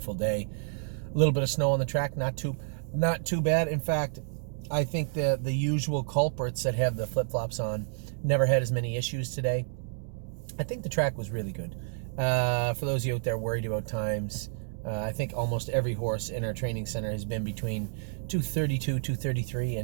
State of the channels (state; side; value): silent; left; digital silence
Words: day. A little bit of snow on the track, not too bad. In fact, I think the usual culprits that have the flip-flops on never had as many issues today. I think the track was really good. For those of you out there worried about times, I think almost every horse in our training center has been between 2:32, 2:33,